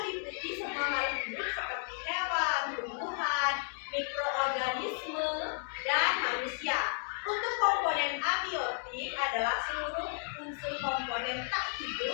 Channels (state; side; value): silent; right; 56 dB below the other